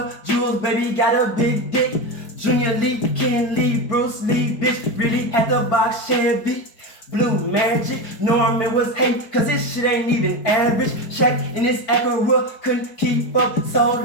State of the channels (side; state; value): right; late; 4.6 ms